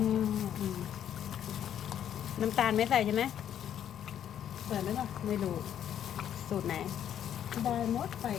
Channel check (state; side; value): quieter; right; 9.8 dB